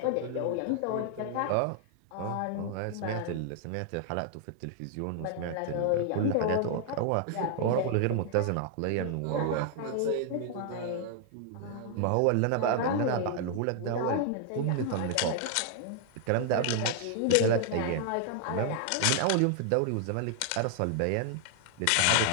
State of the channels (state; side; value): different; both; correlation 0.00